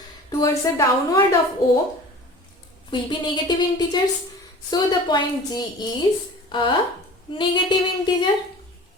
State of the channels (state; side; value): normal; both; correlation 0.41